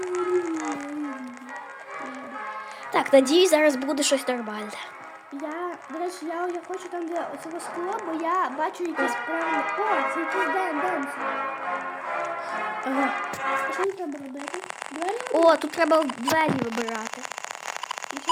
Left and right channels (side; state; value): both; identical; correlation 1.00